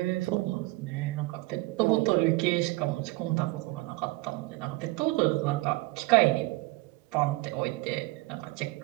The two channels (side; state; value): left; quieter; 21.7 dB